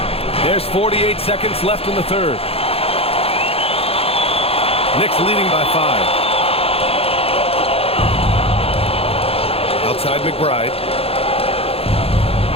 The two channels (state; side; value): late; right; 0.28 ms